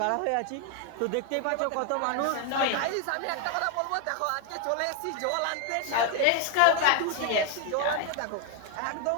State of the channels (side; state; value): both; different; correlation 0.01